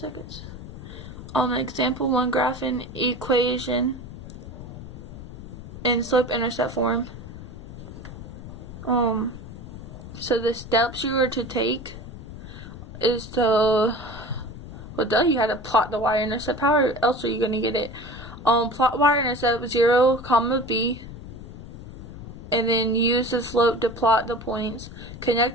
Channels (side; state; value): left; noise; rumble, 12 dB below the sound